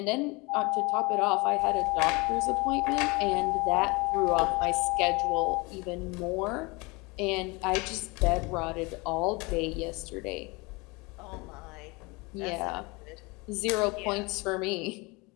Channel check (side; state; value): right; quieter; 26.3 dB